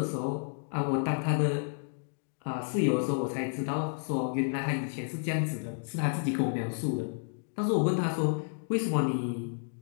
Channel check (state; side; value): silent; right; digital silence